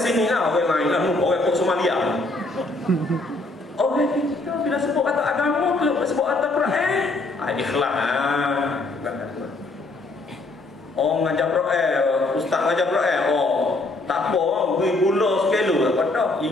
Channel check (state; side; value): quieter; right; 3.1 dB